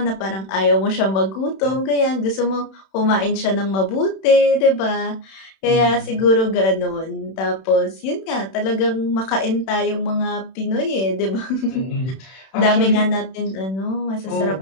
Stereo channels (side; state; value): right; late; 31 ms